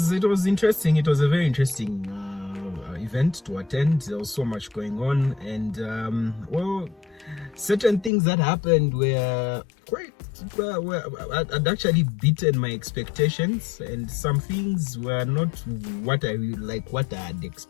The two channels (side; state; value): right; drops out; at 8.1 s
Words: interesting. It was a very interesting event to attend. There was so much going on, and certain things that happened were had actually beaten my expectations, and some things were not what I had